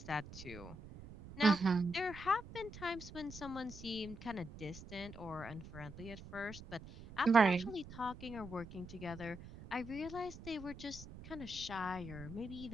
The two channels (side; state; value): right; noise; rumble, 14 dB below the sound